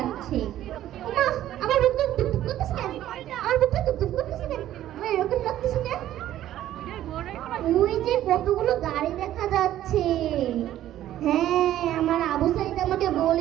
ওমা, আমার বুকটা ধুকধুক করতেছে কেন? আমার বুকটা ধুকধুক করতেছে কেন? আমার এরকম লাগতেছে কেন? ওই যে কতগুলো গাড়ি দেখা যাচ্ছে। হ্যাঁ, আমার আবু সাইদ আমাকে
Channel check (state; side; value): quieter; left; 12.8 dB